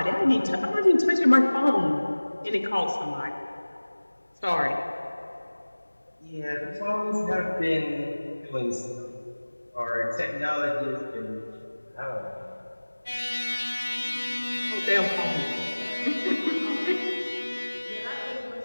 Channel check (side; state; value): both; inverted; correlation -1.00